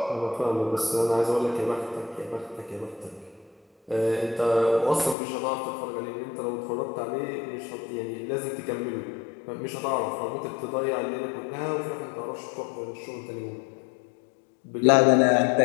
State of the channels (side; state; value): right; drops out; at 5.2 s